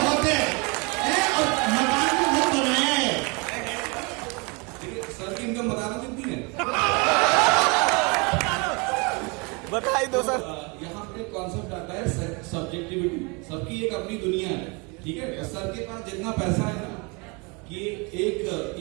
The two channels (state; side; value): quieter; left; 29.8 dB